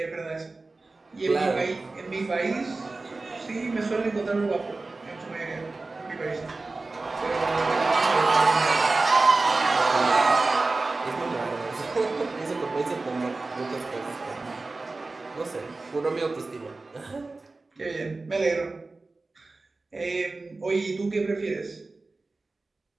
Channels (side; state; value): left; quieter; 3.5 dB